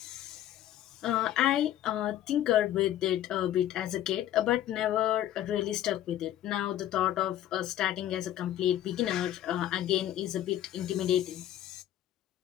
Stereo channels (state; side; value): quieter; right; 12.3 dB